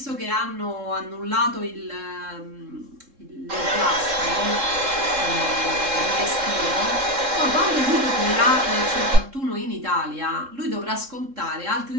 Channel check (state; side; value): late; left; 3.7 ms